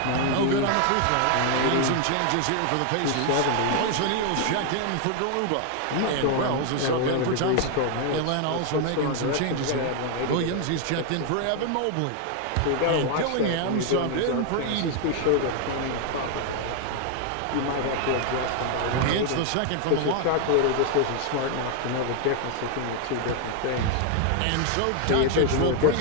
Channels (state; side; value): different; both; correlation 0.00